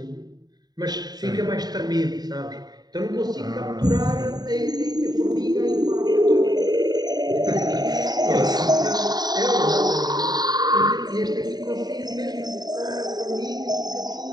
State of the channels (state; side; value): late; left; 0.20 ms